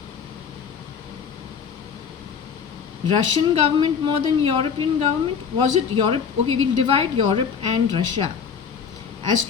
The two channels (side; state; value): right; quieter; 6.7 dB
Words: Russian government more than European government? Was it Europe? Okay, we'll divide Europe and Russia as